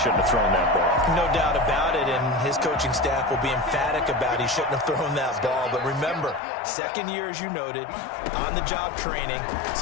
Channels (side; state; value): right; drops out; at 6.4 s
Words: have thrown that ball. No doubt about it, and his coaching staff will be emphatic about he shouldn't have thrown that ball. But remember, 2nd year, as you noted, on-the-job training,